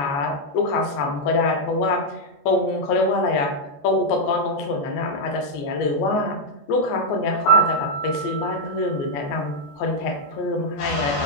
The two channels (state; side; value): late; right; 14 ms